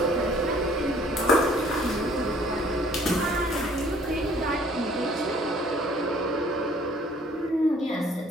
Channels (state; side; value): normal; both; correlation 0.58